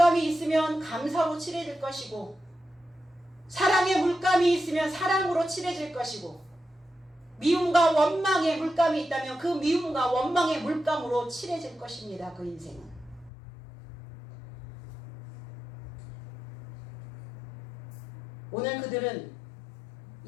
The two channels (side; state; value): right; drops out; at 13.3 s